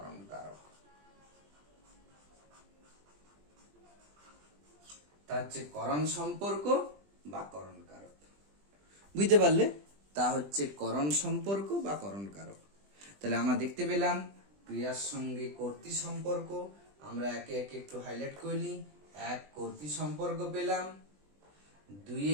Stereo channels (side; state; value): left; late; 20 ms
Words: কারক। তা হচ্ছে করণ সম্পর্ক বা করণ কারক। বুঝতে পারলে? তা হচ্ছে করণ সম্পর্ক বা করণ কারক। তাহলে আমরা দেখতে পেলাম ক্রিয়ার সঙ্গে কর্তৃ সম্পর্ক। আমরা একে একে একটু হাইলাইট করে নিই। 1 কর্তৃ সম্পর্ক পেলাম,